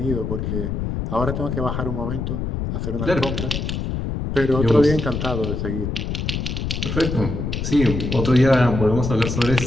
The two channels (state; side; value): noise; left; rumble, 3 dB below the sound